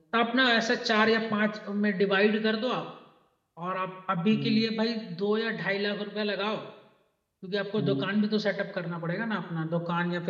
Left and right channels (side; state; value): both; identical; correlation 1.00